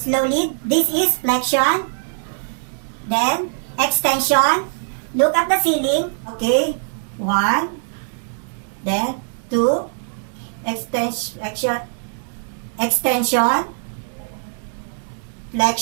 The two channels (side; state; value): left; silent; digital silence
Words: This is flexion. Then extension. Look at the ceiling. Okay. 1. Then 2. Extension,